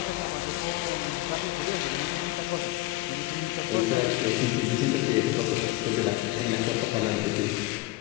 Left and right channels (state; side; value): quieter; right; 18.8 dB